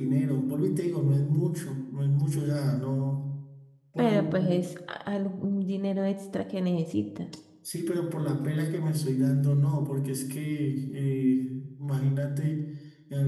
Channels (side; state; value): both; identical; correlation 1.00